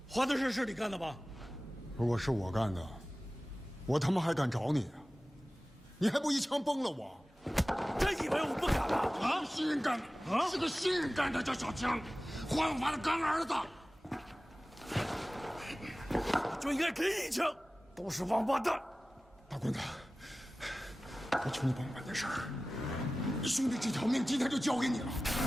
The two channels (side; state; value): both; normal; correlation 0.97